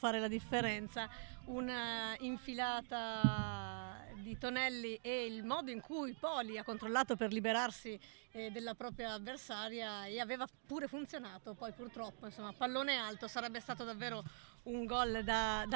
la differenza. Una infilata di Tonelli e il modo in cui Poli ha controllato per liberarsi della propria avversaria, e aveva pure funzionato. Poi purtroppo, insomma, pallone alto, sarebbe stato davvero un gol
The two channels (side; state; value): left; silent; digital silence